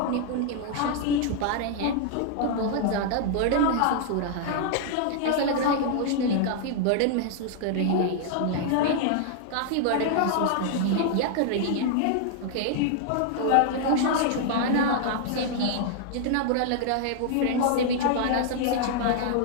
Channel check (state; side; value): different; both; correlation 0.00